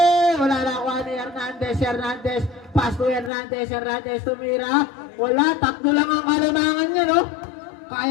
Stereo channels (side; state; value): right; drops out; at 3.3 s